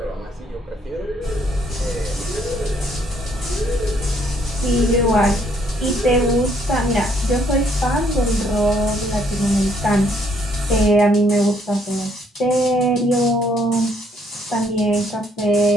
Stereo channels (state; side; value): normal; both; correlation 0.67